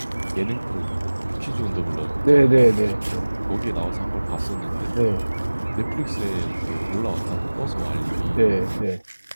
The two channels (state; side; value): inverted; both; correlation -1.00